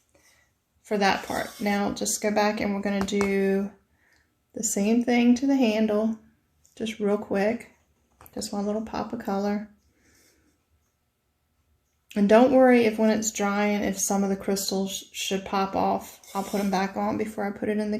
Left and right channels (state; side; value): identical; both; correlation 1.00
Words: for that part. Now just go back and we're going to do the same thing to the handle, just real quick. Just one little pop of color. And don't worry if when it's drying, if some of the crystals should pop off. I'll put them back on before I put it in the